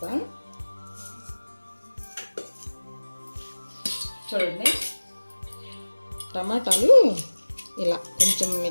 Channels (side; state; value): both; inverted; correlation -1.00